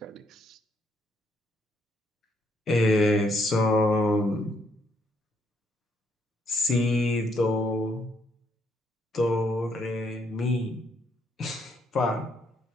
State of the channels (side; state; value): both; normal; correlation 0.73